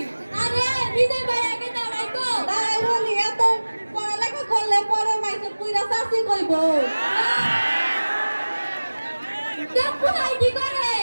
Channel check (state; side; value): inverted; both; correlation -1.00